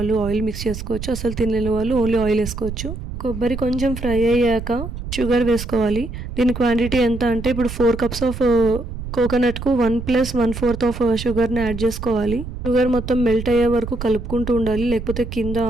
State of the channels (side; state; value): right; noise; rumble, 8 dB below the sound